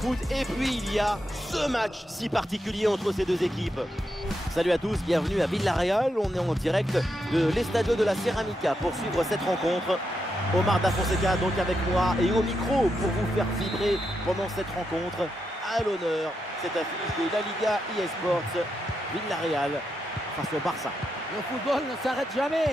et puis il y a ce match si particulier entre ces deux équipes. Salut à tous, bienvenue à Villarreal. On est en direct de l'Estadio de la Ceramica pour suivre cette rencontre. Omar Da Fonseca donc avec moi et au micro pour vous faire vibrer pendant cette rencontre. À l'honneur, cette affiche de la Liga eSports, Villarreal face au Barça. Le football ne s'arrête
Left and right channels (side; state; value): both; normal; correlation 0.84